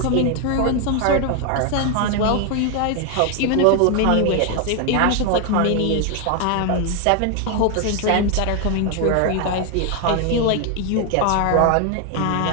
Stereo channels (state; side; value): different; both; correlation 0.00